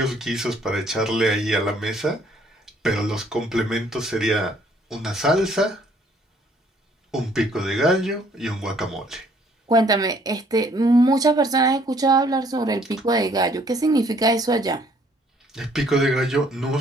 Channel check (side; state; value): both; normal; correlation 0.62